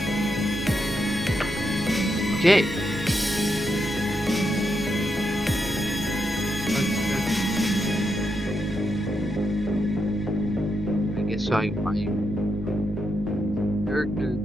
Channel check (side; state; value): both; normal; correlation 0.82